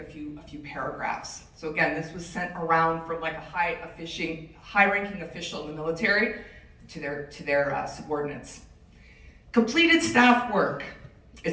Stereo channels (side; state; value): both; identical; correlation 1.00